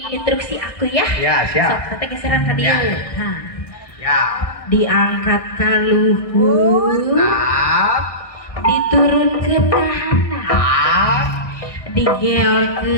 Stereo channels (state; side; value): late; right; 1.6 ms